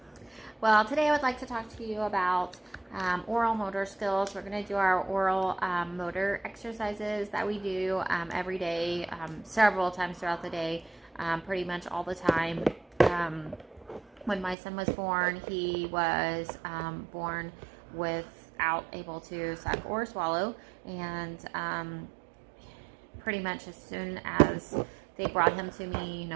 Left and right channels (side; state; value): left; drops out; at 14.6 s